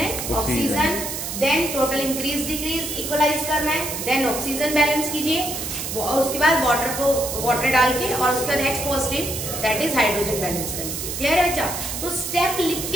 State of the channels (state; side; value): noise; right; hiss, 5 dB below the sound